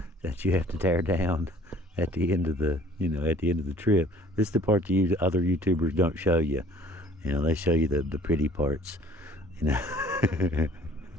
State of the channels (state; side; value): normal; both; correlation 0.53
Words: that you have to tear down at the end of the trip. This is the part that other YouTubers don't show you. They show you the pretty parts.